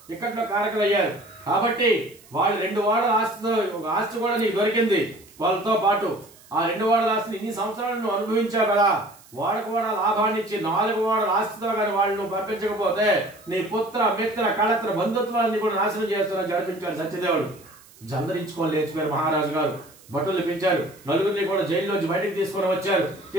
ఇక్కట్లో కారకులు అయ్యారు. కాబట్టి వాళ్ళు 2 వాడల ఆస్తి కూడా నీకు దొరికింది. వాళ్ళతో పాటు ఆ 2 వాడల ఆస్తిని ఇన్ని సంవత్సరాలు నువ్వు అనుభవించావు కదా. వాళ్ళకు కూడా లాభాన్ని ఇచ్చి 4 వాడల ఆస్తితో కానీ వాళ్ళు నువ్వు పంపించకపోతే నీ పుత్ర మిత్ర కళత్ర బంధుత్వాన్ని కూడా నాశనం చేస్తున్నా జరిపించాడు సత్యదేవుడు. జందరించుకొని లేచిపోయారు మహారాజు గారు. భటులు పిలిచారు. నలుగురిని కూడా జైల్లోంచి బయటికి తీసుకొని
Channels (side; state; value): right; noise; hiss, 25 dB below the sound